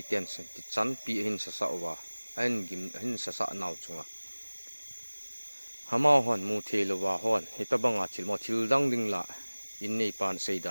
ten sen ti chan pi hin sa sa wa an gim hin sa sa naw chunga hama hon mu thelo wa hon heta banga thil mo thil dang ding la in nei pan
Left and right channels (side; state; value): both; inverted; correlation -1.00